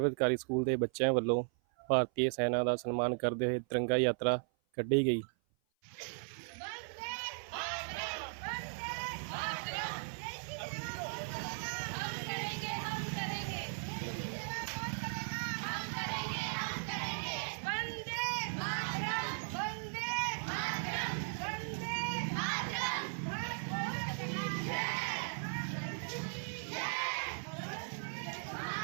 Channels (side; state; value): left; silent; 53 dB below the other